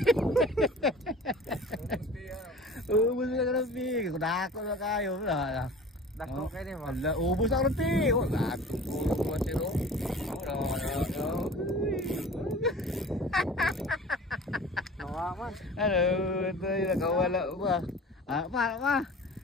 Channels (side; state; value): both; normal; correlation 0.41